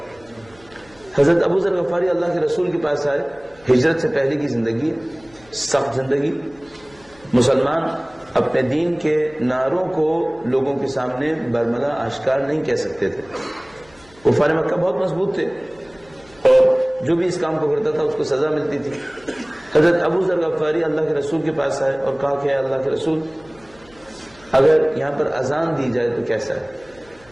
حضرت ابو ذر غفاری اللہ کے رسول کے پاس آئے، ہجرت سے پہلے کی زندگی، سخت زندگی، مسلمان اپنے دین کے نعروں کو لوگوں کے سامنے برملا آشکار نہیں کہہ سکتے تھے۔ کفار مکہ بہت مضبوط تھے اور جو بھی اس کام کو کرتا تھا اس کو سزا ملتی تھی۔ حضرت ابو ذر غفاری اللہ کے رسول کے پاس آئے اور کہا کہ اے اللہ کے رسول، اگر یہاں پر اذان دی جائے تو کیسا ہے؟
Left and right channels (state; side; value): noise; left; hum, 27 dB below the sound